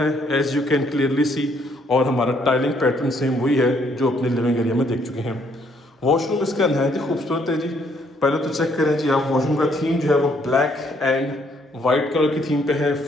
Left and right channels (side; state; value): both; normal; correlation 0.68